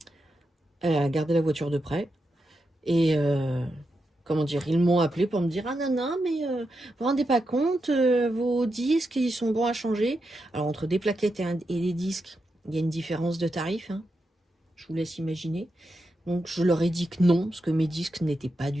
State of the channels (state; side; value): normal; both; correlation 0.86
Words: Elle a gardé la voiture de prêt. Et comment dire, ils m'ont appelé pour me dire ah non non mais vous vous rendez pas compte, vos disques ils sont bons à changer. Alors entre des plaquettes et des disques, il y a une différence de tarif, hein. Je vous laisse imaginer. Donc je leur ai dit que non, parce que mes disques n'étaient pas